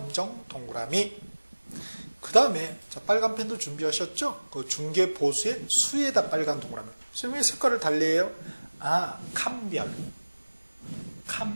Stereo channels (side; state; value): both; inverted; correlation -1.00